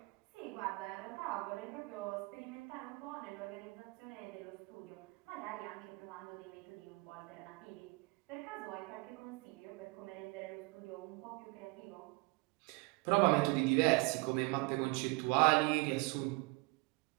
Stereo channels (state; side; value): quieter; left; 25.6 dB